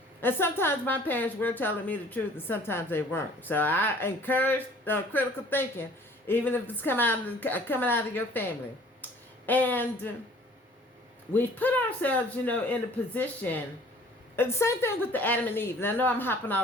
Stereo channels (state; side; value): normal; both; correlation 0.52